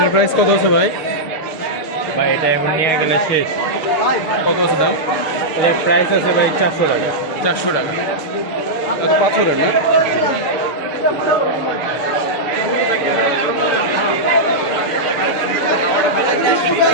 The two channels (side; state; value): right; late; 6.7 ms